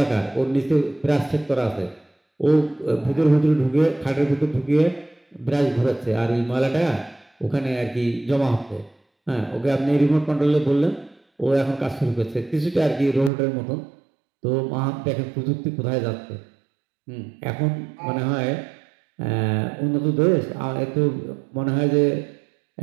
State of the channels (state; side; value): drops out; left; at 13.3 s